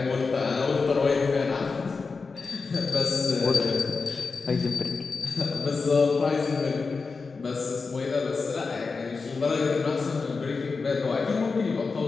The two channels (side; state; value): right; quieter; 4.5 dB